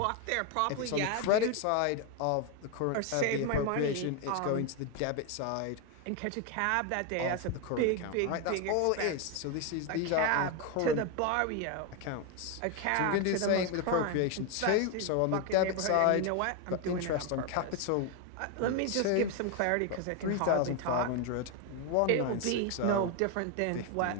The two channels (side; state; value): both; different; correlation 0.01